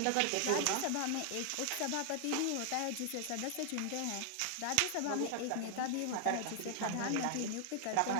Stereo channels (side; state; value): both; different; correlation 0.00